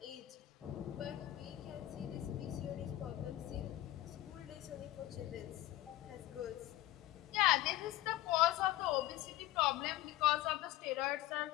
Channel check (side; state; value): right; quieter; 15.5 dB